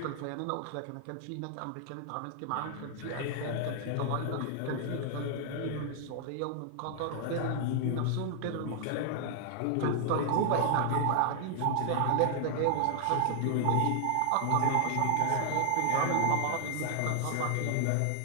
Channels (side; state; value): both; different; correlation 0.00